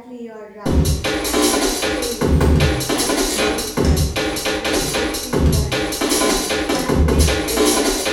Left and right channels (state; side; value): identical; both; correlation 1.00